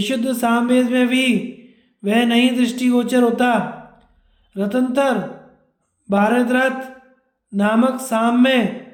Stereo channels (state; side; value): identical; both; correlation 1.00